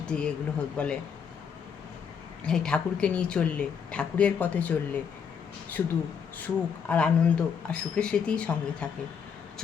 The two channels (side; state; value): right; quieter; 6.9 dB